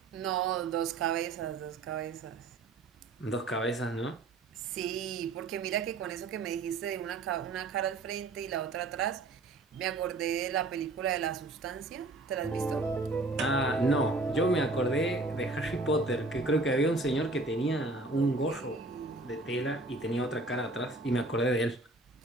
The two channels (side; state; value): left; quieter; 3.1 dB